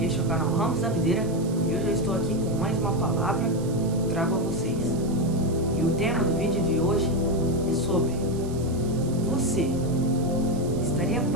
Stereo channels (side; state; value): right; noise; hiss, 19 dB below the sound